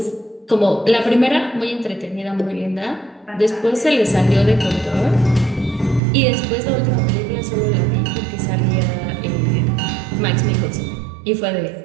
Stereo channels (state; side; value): drops out; left; at 6.0 s